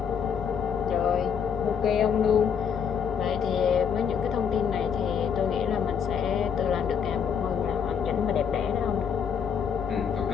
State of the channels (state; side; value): quieter; right; 7.3 dB